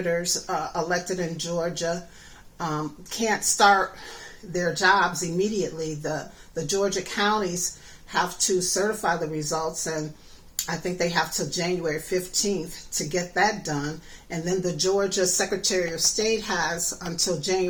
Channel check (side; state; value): both; identical; correlation 1.00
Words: elected in Georgia can't start their jobs immediately. The Georgia counties have to certify the results, and I think they have till January 15th to get that done. And then the Georgia Secretary of State has until